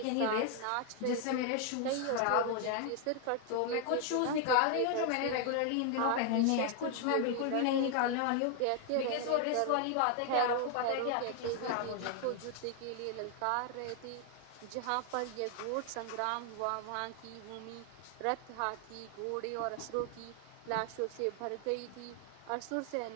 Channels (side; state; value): both; different; correlation 0.00